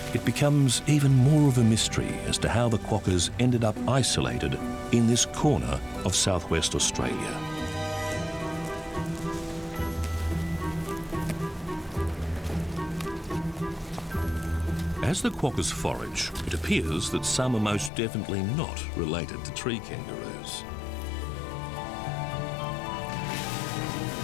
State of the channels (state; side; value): drops out; right; at 17.9 s